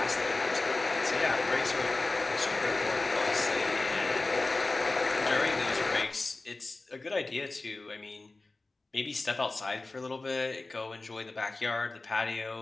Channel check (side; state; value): right; quieter; 3.3 dB